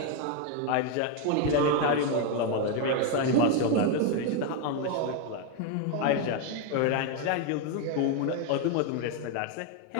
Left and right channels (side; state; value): both; different; correlation 0.01